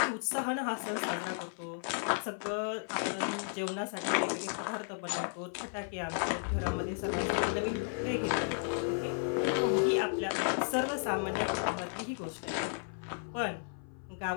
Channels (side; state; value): right; silent; 55 dB below the other